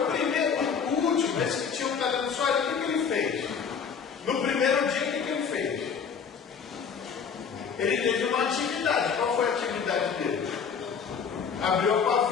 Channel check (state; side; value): quieter; right; 6.5 dB